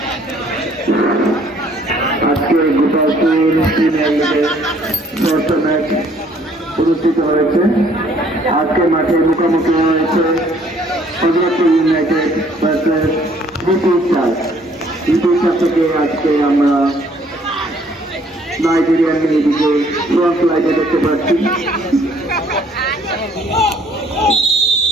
আজকে গোপালপুর ম্যাচ অনুষ্ঠিত হয়েছে। আজকে মাঠে মুখোমুখি হয়েছে হযরতপুর ইউনাইটেড ভার্সেস দ্বিতীয় থেকে আজকে আমরা নাইজেরিয়ান মেয়েদিকে ফ্রন্ট লাইনে দেখতে পাচ্ছি।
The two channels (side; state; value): both; normal; correlation 0.61